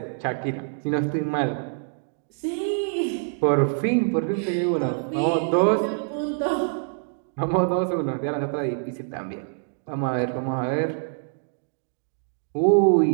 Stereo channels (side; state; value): left; silent; digital silence